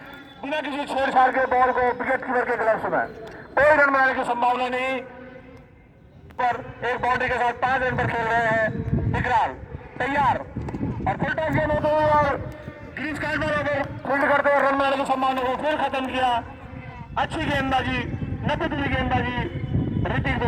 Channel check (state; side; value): identical; both; correlation 1.00